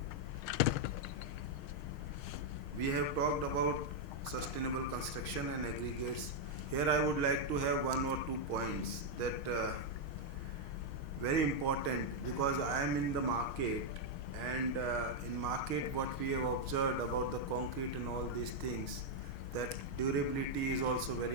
we have talked about sustainable construction and aggregates. Here I would like to have 1 or 2 points that very important, because I am in the market, and in market what we have observed about the concrete and all these things, that durability is also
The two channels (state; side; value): late; right; 6.4 ms